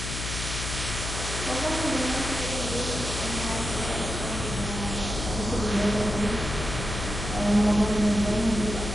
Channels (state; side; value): noise; left; hum, 5 dB below the sound